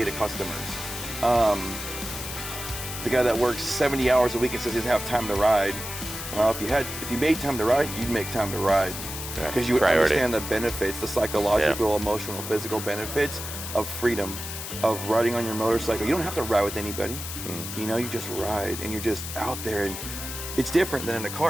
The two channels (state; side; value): noise; left; hiss, 8 dB below the sound